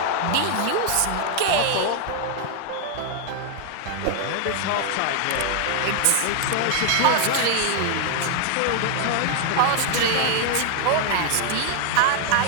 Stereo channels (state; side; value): different; both; correlation 0.00